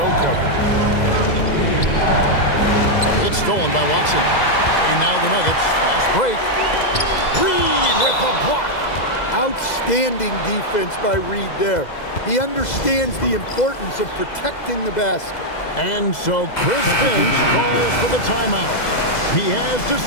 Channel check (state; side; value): late; right; 2.0 ms